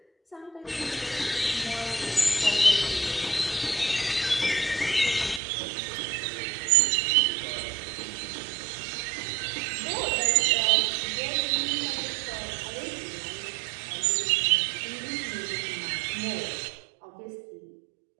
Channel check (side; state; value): left; drops out; at 5.4 s